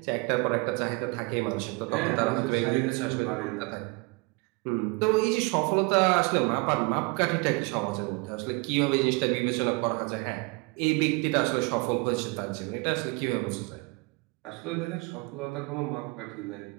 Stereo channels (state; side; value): quieter; left; 27.6 dB